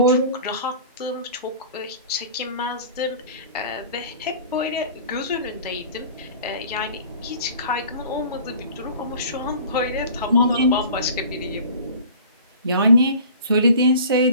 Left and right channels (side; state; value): both; inverted; correlation -0.43